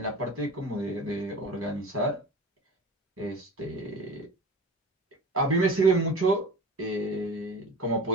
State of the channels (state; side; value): normal; both; correlation 0.35